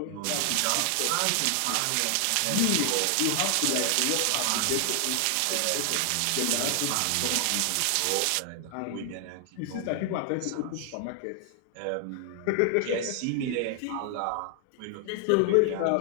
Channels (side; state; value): both; different; correlation 0.00